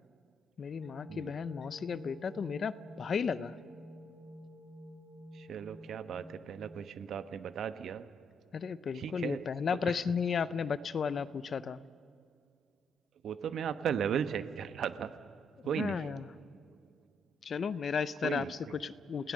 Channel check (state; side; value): normal; both; correlation 0.74